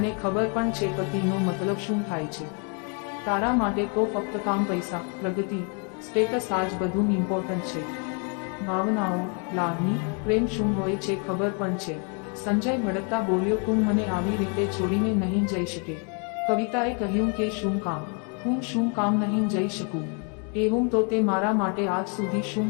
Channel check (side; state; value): right; quieter; 38.1 dB